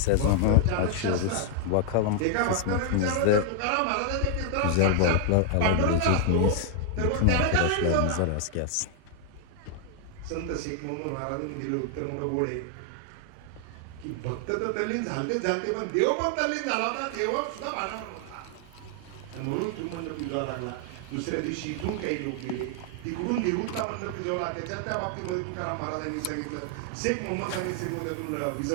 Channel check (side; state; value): both; different; correlation 0.00